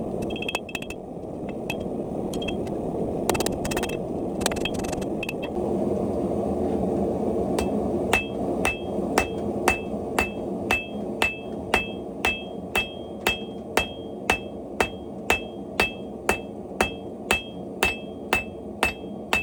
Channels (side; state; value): both; identical; correlation 1.00